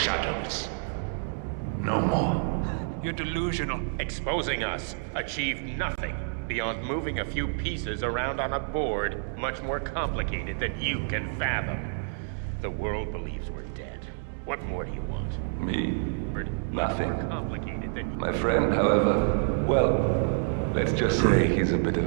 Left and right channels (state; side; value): silent; left; digital silence